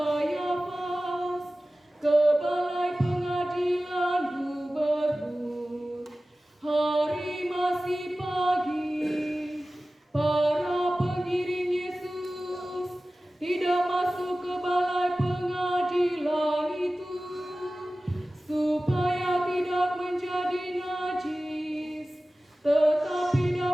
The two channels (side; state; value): both; normal; correlation 0.96